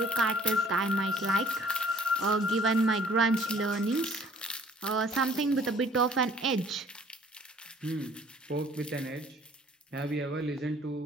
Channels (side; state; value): both; normal; correlation 0.57